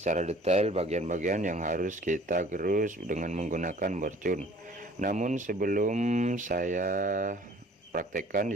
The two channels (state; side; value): normal; both; correlation 0.52